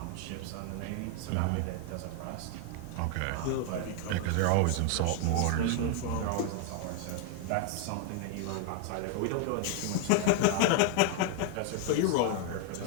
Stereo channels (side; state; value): both; different; correlation 0.00